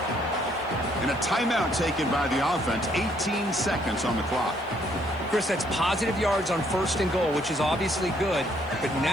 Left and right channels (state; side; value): noise; right; hiss, 30 dB below the sound